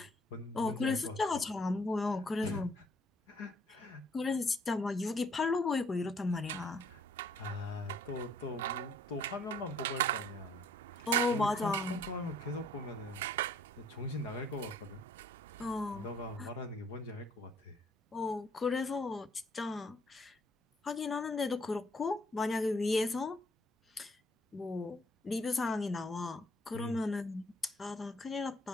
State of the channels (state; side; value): normal; both; correlation 0.63